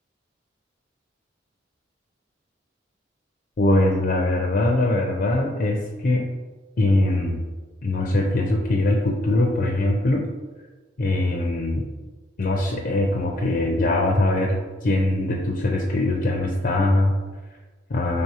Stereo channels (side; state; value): both; normal; correlation 0.70